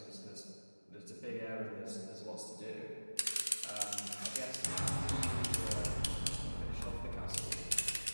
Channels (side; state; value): both; inverted; correlation -1.00